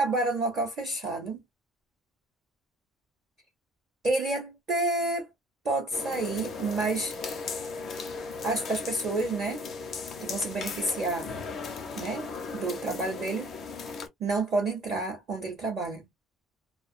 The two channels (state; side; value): normal; both; correlation 0.54